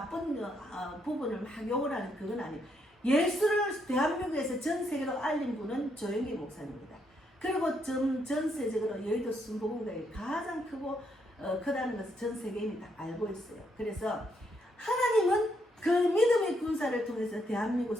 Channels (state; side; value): normal; both; correlation 0.76